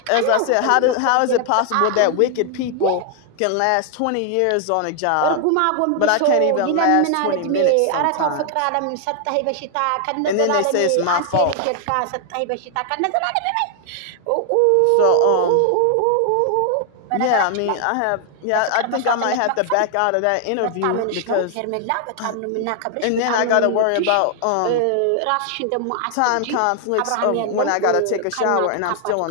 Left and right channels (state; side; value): different; both; correlation 0.00